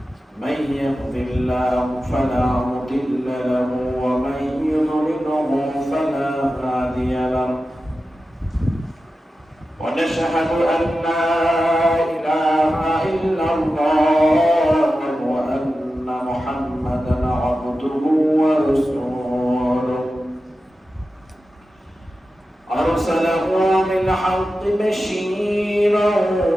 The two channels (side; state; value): both; normal; correlation 0.93